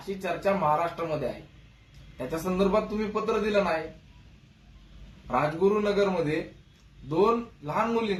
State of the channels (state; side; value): identical; both; correlation 1.00